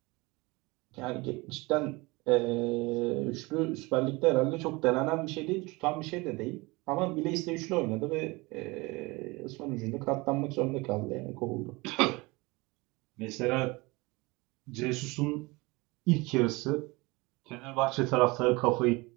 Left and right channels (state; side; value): quieter; left; 24.2 dB